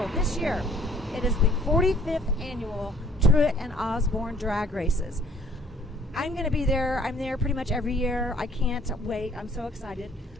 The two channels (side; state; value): both; normal; correlation 0.58